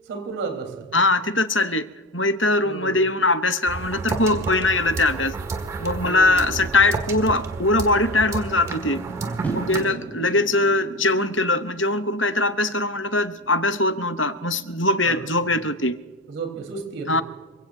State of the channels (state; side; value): normal; both; correlation 0.26